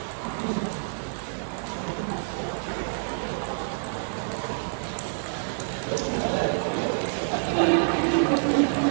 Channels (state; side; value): silent; left; 60 dB below the other